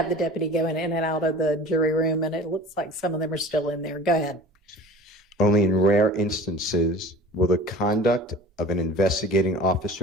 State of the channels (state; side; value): normal; both; correlation 0.41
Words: the deputy going in and out of the jury room, and it looks like some of them are still in there. Go ahead. Only in rare instances will the conduct of an investigating